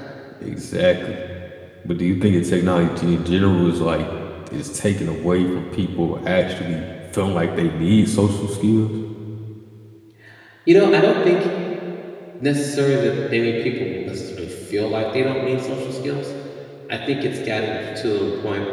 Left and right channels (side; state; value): both; identical; correlation 1.00